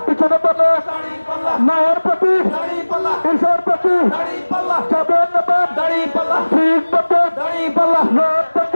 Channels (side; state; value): both; inverted; correlation -1.00